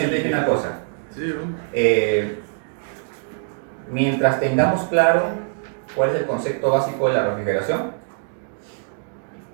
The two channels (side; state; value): left; silent; digital silence